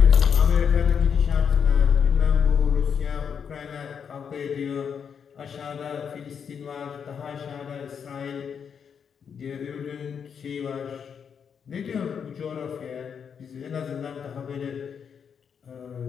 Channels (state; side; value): quieter; right; 7.1 dB